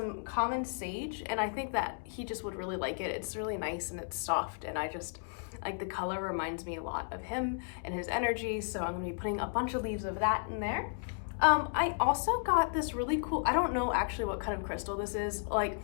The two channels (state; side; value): silent; right; digital silence